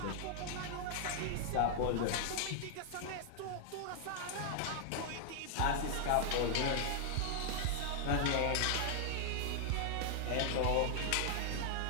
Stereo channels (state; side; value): different; both; correlation -0.01